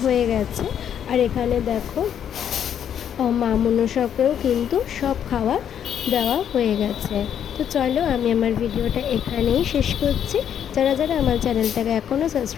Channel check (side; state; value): right; quieter; 9.1 dB